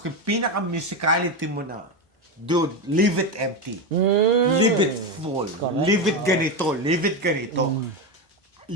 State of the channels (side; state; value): both; normal; correlation 0.13